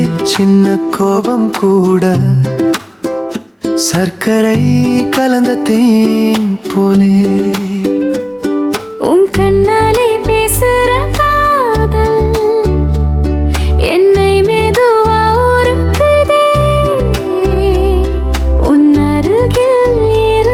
சின்ன கோபம் கூட சர்க்கரை கலந்த தேன் போலே. உன் கண்ணாலே பேசுற காதல் என்னை மெதுவா உருக்குதே. உன் அருகில்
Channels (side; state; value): both; identical; correlation 1.00